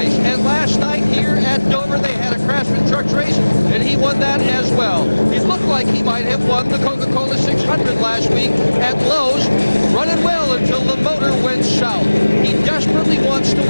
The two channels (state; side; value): inverted; both; correlation -1.00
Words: And last night here at Dover, they had a Craftsman Trucks race, and he won that as well. He looked like he might have won the Coca-Cola 600 last week at Lowe's, running well until the motor went south. He desperately wants to